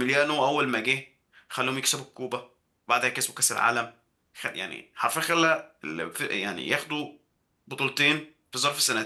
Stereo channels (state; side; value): identical; both; correlation 1.00